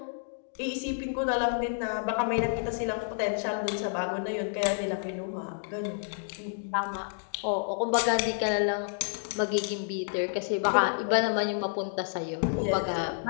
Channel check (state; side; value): silent; right; digital silence